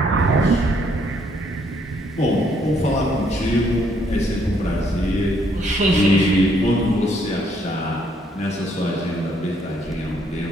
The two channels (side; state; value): both; normal; correlation 0.69